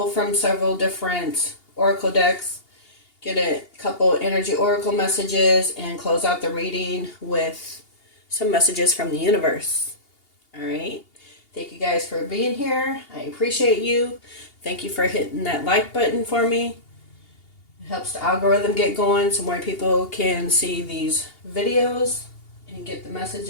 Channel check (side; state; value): right; late; 2.8 ms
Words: from several different oracle decks, get a couple energy oracle messages, and close out the reading with some messages from the universe. All right. Thank you guys for being here. I appreciate you. Thank you for hitting that like button for me. It helps the algorithm get going so more people can see these videos and get the